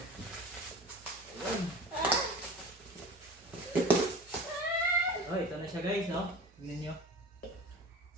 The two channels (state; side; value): normal; both; correlation 0.37